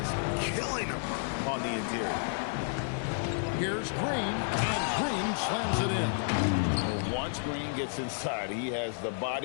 killing him on the interior. Here's Green, and Green slams it in. Well, once Green gets inside, he has the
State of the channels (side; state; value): right; silent; digital silence